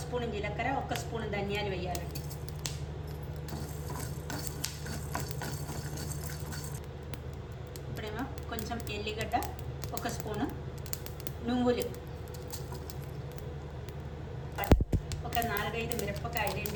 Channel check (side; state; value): both; identical; correlation 1.00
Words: స్పూన్ జీలకర్ర, 1 స్పూన్ ధనియాలు వేయాలండి. ఇప్పుడేమో కొంచెం ఎల్లిగడ్డ, 1 స్పూను నువ్వులు, ఒక 4-5 మిరపకాయలు,